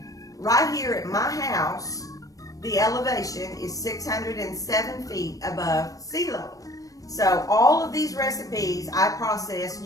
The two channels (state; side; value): late; right; 0.17 ms